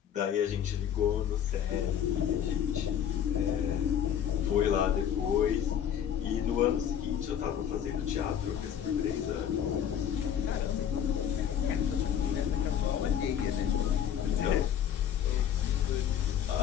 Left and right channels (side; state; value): right; quieter; 9.2 dB